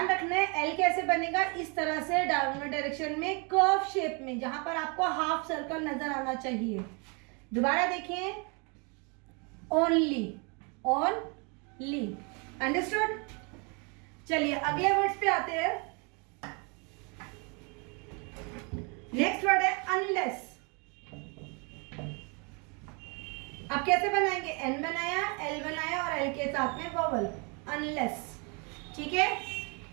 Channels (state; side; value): quieter; left; 33.1 dB